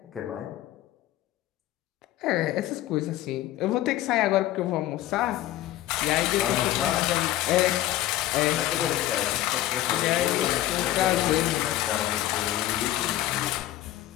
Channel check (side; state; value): right; quieter; 14.5 dB